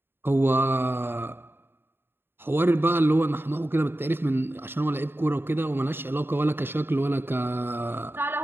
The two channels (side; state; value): left; late; 0.10 ms